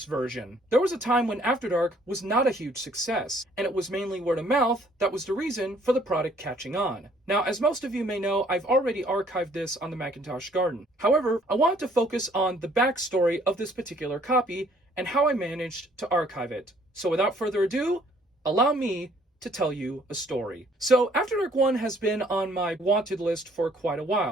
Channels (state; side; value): normal; both; correlation 0.61